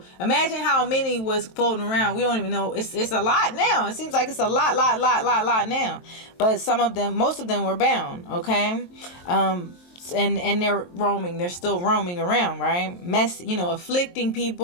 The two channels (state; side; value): late; right; 23 ms